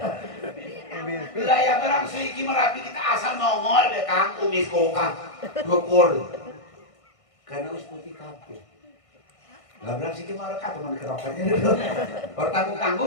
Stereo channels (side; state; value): right; late; 1.6 ms